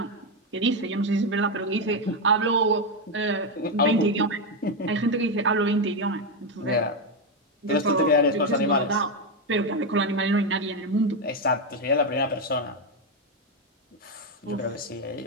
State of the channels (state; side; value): normal; both; correlation 0.06